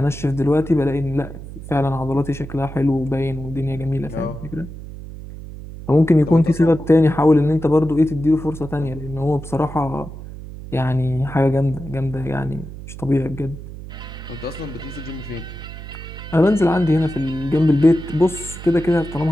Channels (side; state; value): right; noise; hum, 12 dB below the sound